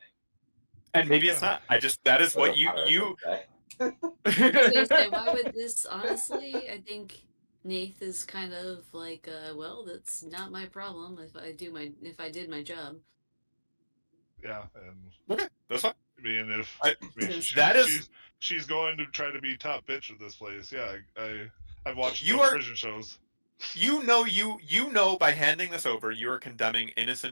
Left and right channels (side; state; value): both; inverted; correlation -1.00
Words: And maybe it's not. That is That's what what Paris you would say. I was gonna say, why would this? Honestly, I think Nath is kind of like, well, that's not my problem if I did my job. Yeah, and Okay, that's fine. I mean, if I- I mean, that is she's going to try to be top bitch of this place. Yeah, I've watched You enough are- prison shows. you know by handing this over you are condemning